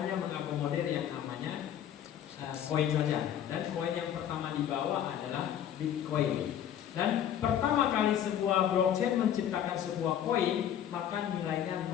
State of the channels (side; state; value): right; quieter; 10.1 dB